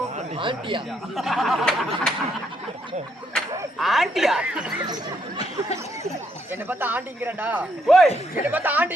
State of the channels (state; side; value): normal; both; correlation 0.74